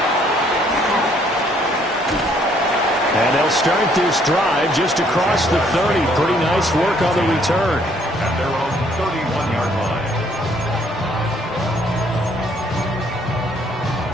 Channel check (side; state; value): both; normal; correlation 0.65